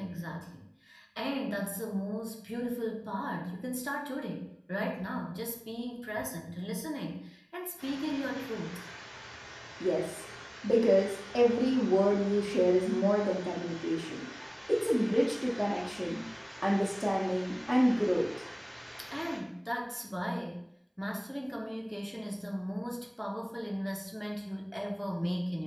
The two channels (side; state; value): both; identical; correlation 1.00